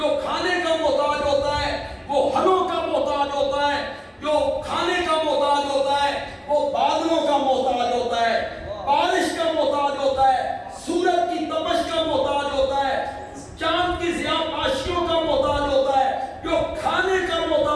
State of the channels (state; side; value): identical; both; correlation 1.00